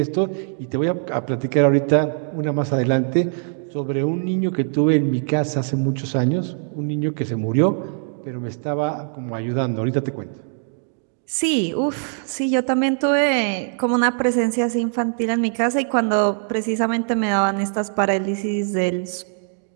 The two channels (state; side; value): silent; left; 56 dB below the other